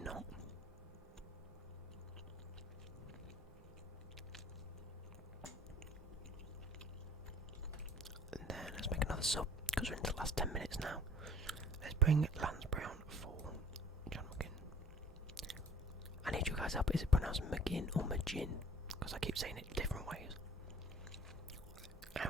not. And then let's make another sub because we're into the last 10 minutes now. Let's bring Lansbury on for John McGinn. I need you guys up. Is it pronounced McGinn or Magin? Because I keep saying it different ways.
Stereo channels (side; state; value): both; normal; correlation 0.51